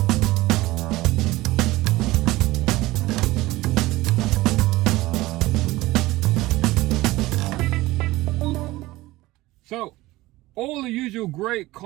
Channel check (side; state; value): left; quieter; 18.7 dB